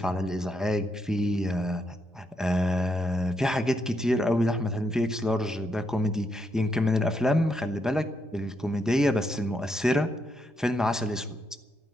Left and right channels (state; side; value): normal; both; correlation 0.79